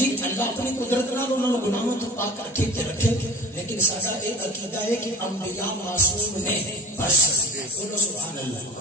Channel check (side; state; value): both; normal; correlation 0.37